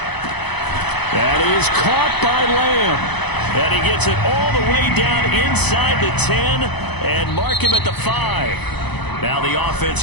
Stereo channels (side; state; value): right; late; 0.99 ms